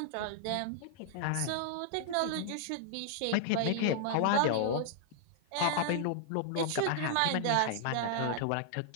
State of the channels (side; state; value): both; different; correlation -0.01